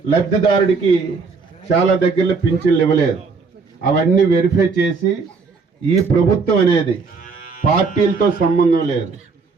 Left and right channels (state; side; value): quieter; left; 4.7 dB